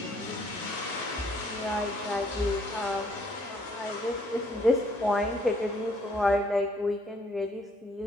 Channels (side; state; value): both; normal; correlation 0.65